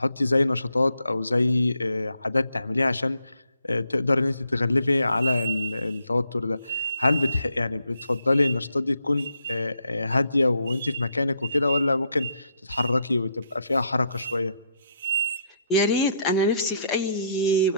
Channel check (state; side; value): inverted; both; correlation -0.74